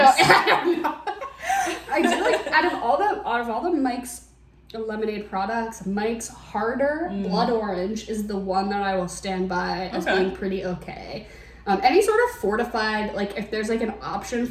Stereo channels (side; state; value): both; identical; correlation 1.00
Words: don't know. I do like out of all the Mike's lemonade products, Mike's Harder Blood Orange is the one that I will stand by as being pretty okay. Any sort of fortified, like if there's like an option